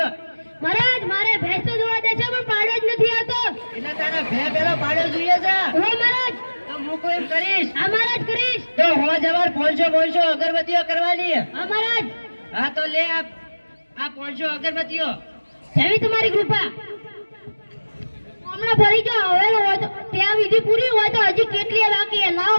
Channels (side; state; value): both; inverted; correlation -1.00